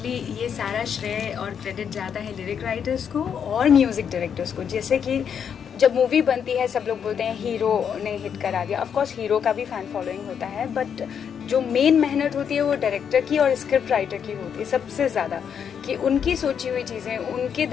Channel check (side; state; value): right; quieter; 7.7 dB